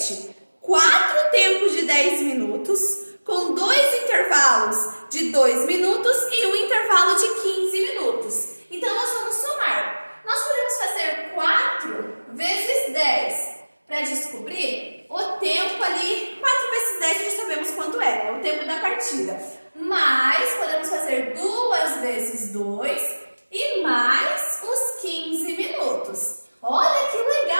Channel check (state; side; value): inverted; both; correlation -1.00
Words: 4 tempos de 10 minutos, com 2 intervalos de 2 minutos e um intervalo de 15 minutos. Então, nós vamos somar. Nós podemos fazer 4 vezes 10 para descobrir o tempo ali. 4 vezes 10 já sabemos quanto é, né? O tempo da partida. Mas podemos fazer 2 vezes 2 e mais os 15 minutos. Olha que